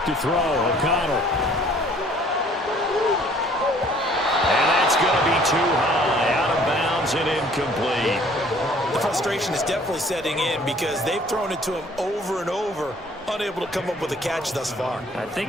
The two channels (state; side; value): normal; both; correlation 0.56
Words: to throw, O'Connell. And that's going to be too high, out of bounds and incomplete. The frustration is definitely setting in because they've thrown it to him over and over, unable to come up with a catch thus far. I think